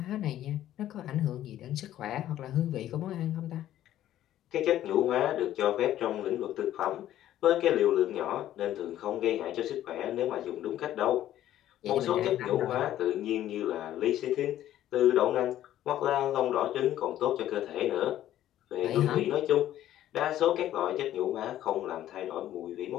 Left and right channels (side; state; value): right; quieter; 12.6 dB